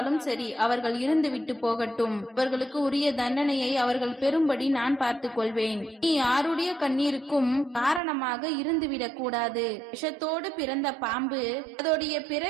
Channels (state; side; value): drops out; left; at 8.0 s